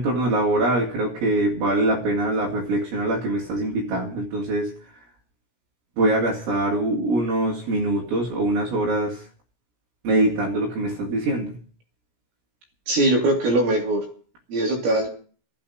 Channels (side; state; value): left; late; 17 ms